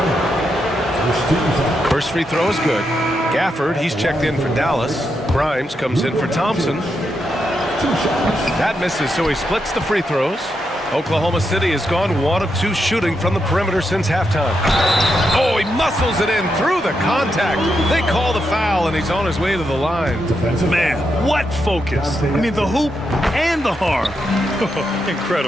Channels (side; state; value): both; normal; correlation 0.83